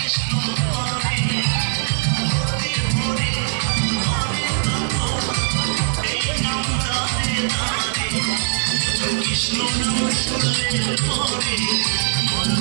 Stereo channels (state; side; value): silent; left; digital silence